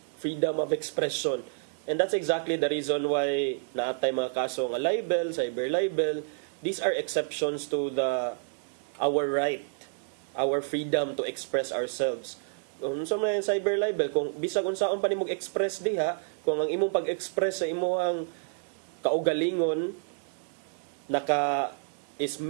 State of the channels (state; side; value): silent; left; digital silence